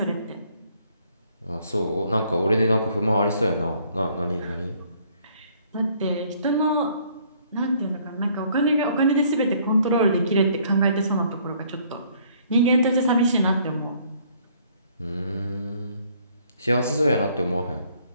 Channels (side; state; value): both; inverted; correlation -0.62